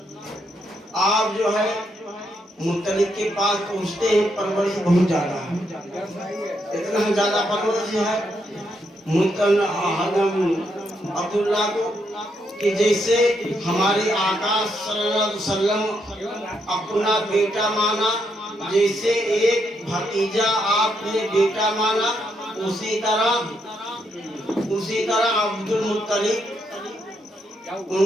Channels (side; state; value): both; normal; correlation 0.78